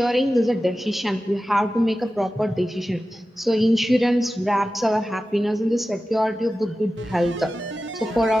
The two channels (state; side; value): normal; both; correlation 0.94